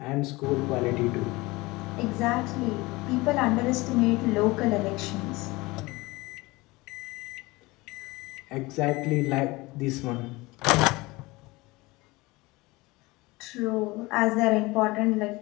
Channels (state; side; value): quieter; right; 22.2 dB